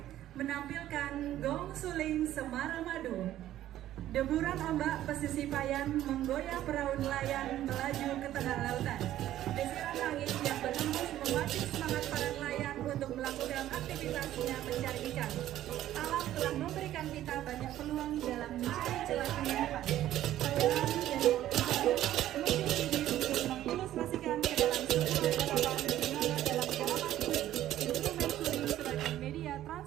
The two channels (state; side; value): quieter; left; 13.1 dB